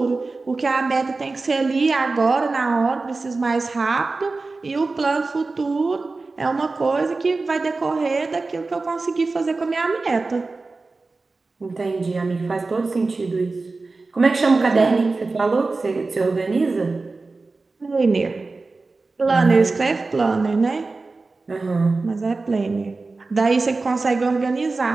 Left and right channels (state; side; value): quieter; left; 3.7 dB